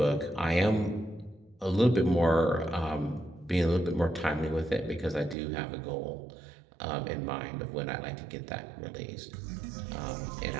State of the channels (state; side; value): drops out; left; at 5.4 s